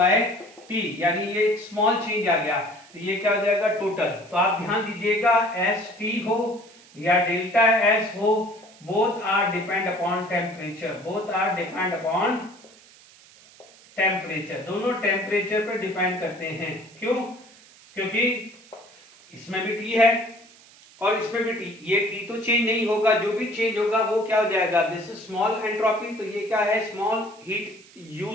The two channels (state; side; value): noise; right; hiss, 24 dB below the sound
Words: T, यानी ये एक स्मॉल चेंज आ गया, तो ये क्या हो जाएगा, टोटल। तो आप ध्यान दीजिएगा, एस टी हो या डेल्टा एस हो, both are depend upon temperature, both are depend upon temperature, दोनों टेम्परेचर पर डिपेंड करते हैं। क्यों? क्योंकि इसमें भी टी है और इसमें भी टी, ये टी तो चेंज नहीं होगा, जो भी चेंज होगा वो क्या हो जाएगा, दिस इज स्मॉल एंट्रोपी, तो ये क्या है, स्मॉल हीट